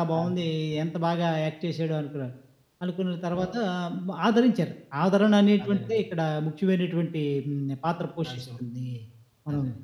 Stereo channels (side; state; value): both; identical; correlation 1.00